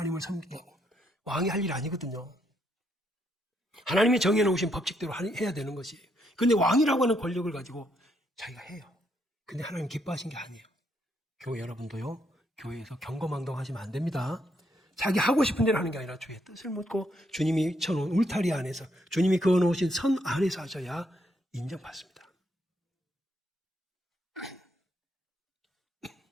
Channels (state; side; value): normal; both; correlation 0.75